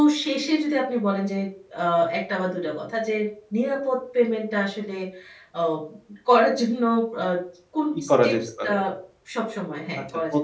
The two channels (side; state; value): both; identical; correlation 1.00